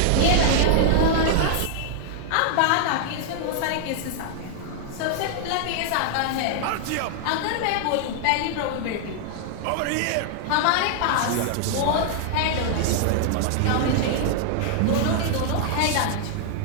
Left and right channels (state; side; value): different; both; correlation -0.01